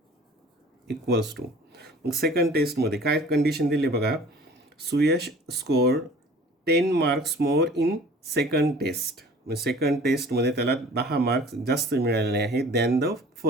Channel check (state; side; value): normal; both; correlation 0.47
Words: equals to, मग सेकंड टेस्टमध्ये काय कंडिशन दिली बघा, Suyash score 10 marks more in second test, म्हणजे सेकंड टेस्टमध्ये त्याला 10 मार्क्स जास्त मिळालेले आहेत दॅन द